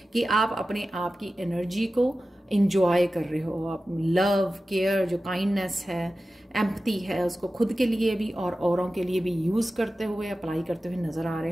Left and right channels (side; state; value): both; normal; correlation 0.94